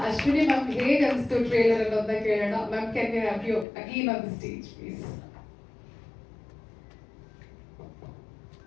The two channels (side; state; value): right; drops out; at 3.7 s